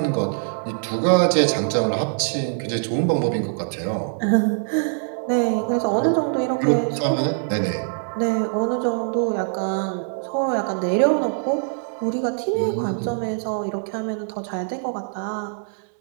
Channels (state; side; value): silent; left; digital silence